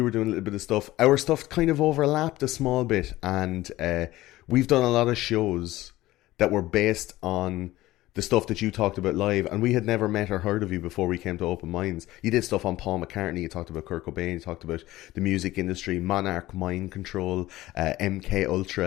were doing a little bit of stuff. Our stuff kind of overlapped a small bit, and we've done a lot of shows that were based on the stuff that you talked about live, and we had never met or heard of you before we came to Open Minds. You did stuff on Paul McCartney, you talked about Kurt Cobain, you talked about the music industry, Monarch, Mind Control, MK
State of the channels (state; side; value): quieter; right; 16.9 dB